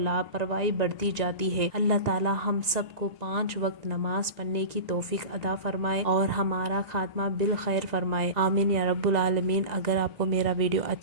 بڑھتی جاتی ہے۔ اللہ تعالی ہم سب کو 5 وقت نماز پڑھنے کی توفیق عطا فرمائے اور ہمارا خاتمہ بالخیر فرمائے، آمین یا رب العالمین۔ اگر آپ کو میرا ویڈیو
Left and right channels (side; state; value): left; late; 1.9 ms